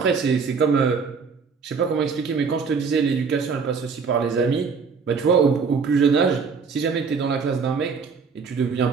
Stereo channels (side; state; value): left; quieter; 5.4 dB